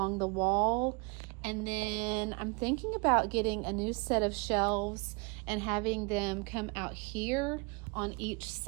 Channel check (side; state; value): left; quieter; 30.8 dB